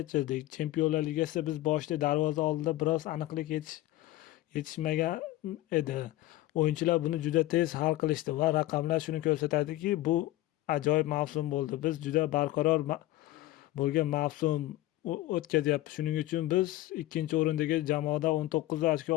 Chempionlar Ligasida biz boshida darvoza oldida biroz aniqlik yetishmagan edi. O'yinchilar buni juda tez hal qilishdi va raqamlar shuni ko'rsatadiki, bu ajoyib mavsum bo'ldi. Biz juda barqaror bo'lgan mavsum o'tkazyapti. Shuning uchun biz ikkinchi o'rindagi jamoada 19 ochko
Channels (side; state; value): right; quieter; 16.3 dB